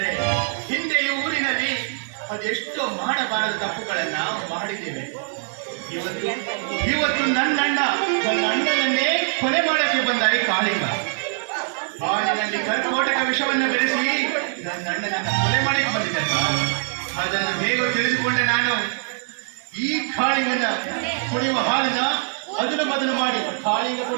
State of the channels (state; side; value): silent; left; digital silence